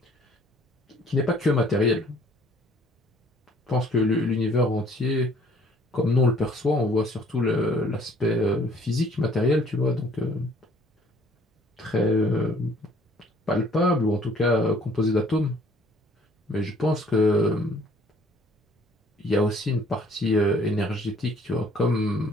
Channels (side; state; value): both; normal; correlation 0.58